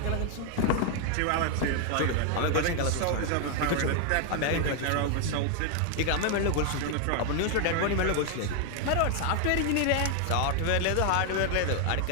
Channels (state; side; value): different; both; correlation 0.01